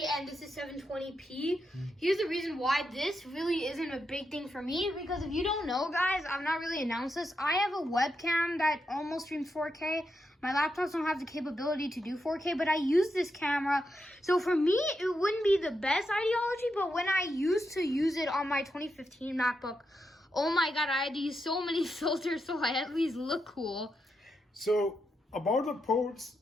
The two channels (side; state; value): both; normal; correlation 0.84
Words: and this is 720p. Here's the reason why this really isn't a big thing for me, because if you don't know, guys, I've not really announced this. I have a webcam that almost streams 4K. My laptops don't have the capability to do 4K, but I use this camera. So for me, it wouldn't be the best ideology, but when I used to use it on my 2015 MacBook, oh my God, I had to use so many filters so I at least look cool. So about the ports,